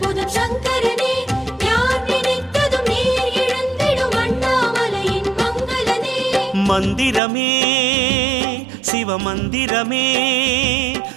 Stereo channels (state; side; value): drops out; left; at 7.2 s